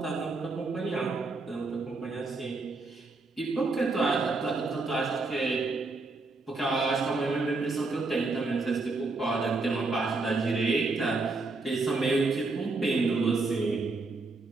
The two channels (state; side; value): quieter; left; 3.6 dB